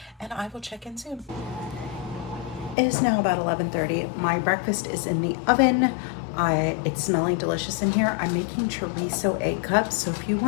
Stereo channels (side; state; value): right; drops out; at 2.8 s